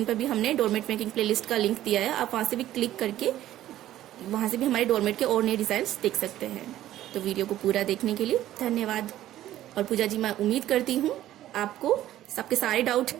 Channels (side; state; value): left; quieter; 13.4 dB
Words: पर भी हमने डोरमेट मेकिंग प्लेलिस्ट का लिंक दिया है, आप वहां से भी क्लिक करके वहां से भी हमारे डोरमेट के और नए डिजाइन देख सकते हैं। तो वीडियो को पूरा देखने के लिए धन्यवाद। और पूजा जी, मैं उम्मीद करती हूँ आपको सबके सारे